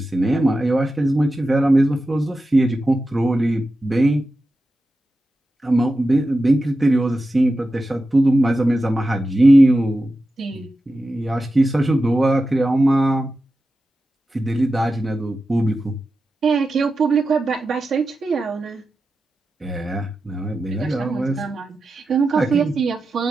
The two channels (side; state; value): both; normal; correlation 0.92